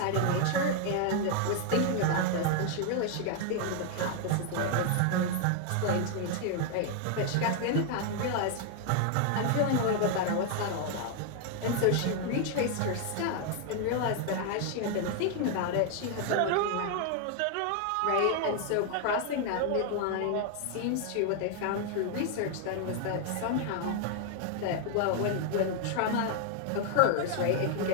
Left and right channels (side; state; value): both; different; correlation 0.00